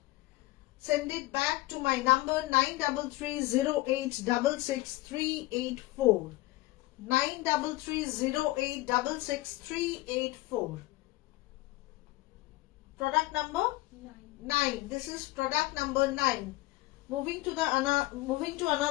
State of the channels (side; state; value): right; quieter; 19.4 dB